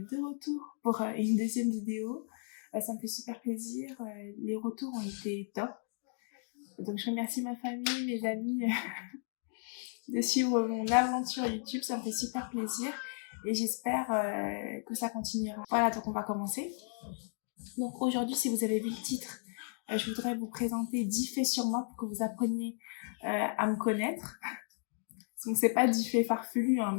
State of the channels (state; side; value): silent; right; 55 dB below the other